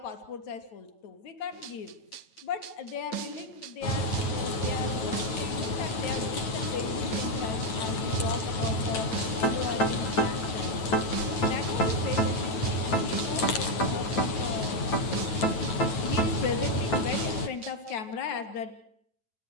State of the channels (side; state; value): right; late; 9.1 ms